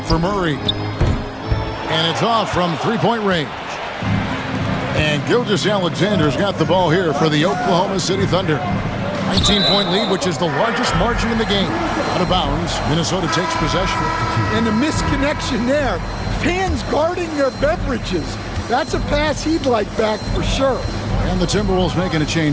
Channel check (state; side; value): identical; both; correlation 1.00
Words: for Murray. And it's off from three-point range. And Gilgeous-Alexander's got the ball here for the Oklahoma City Thunder. 19-point lead, which is the largest margin in the game. Out of bounds, Minnesota takes possession. And the misconnection there. Fans guarding their beverages. That's a pass he'd like back for sure. And the Timberwolves making a